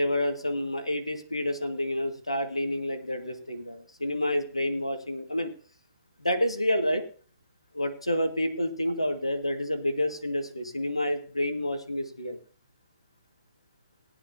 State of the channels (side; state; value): both; inverted; correlation -0.88